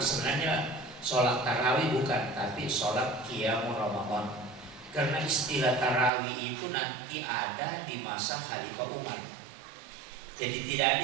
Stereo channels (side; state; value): left; drops out; at 6.1 s